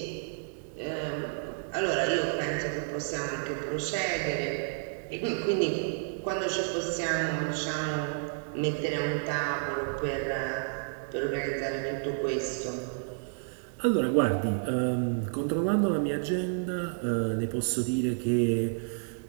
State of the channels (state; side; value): silent; left; digital silence